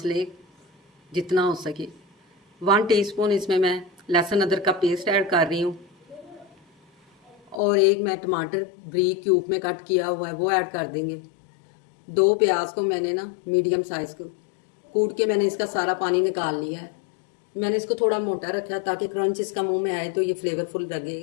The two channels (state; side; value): drops out; right; at 7.6 s